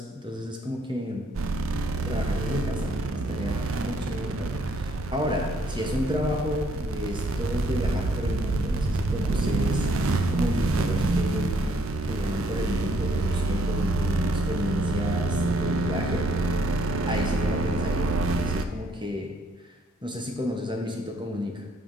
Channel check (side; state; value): both; normal; correlation 0.68